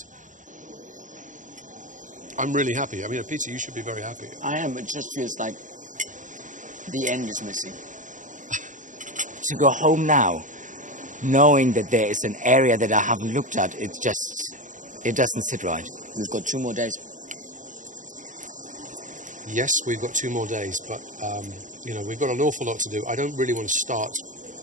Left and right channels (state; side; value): late; left; 0.37 ms